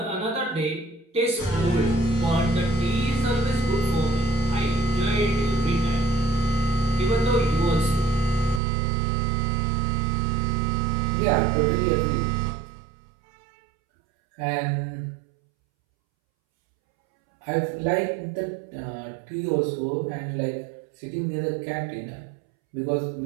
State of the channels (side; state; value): left; drops out; at 8.6 s